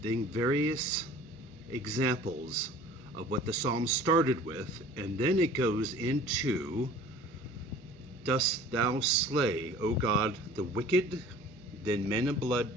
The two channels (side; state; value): both; normal; correlation 0.46